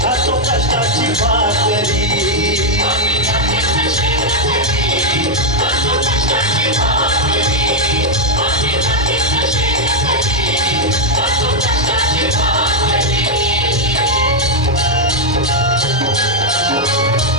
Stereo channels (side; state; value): both; normal; correlation -0.01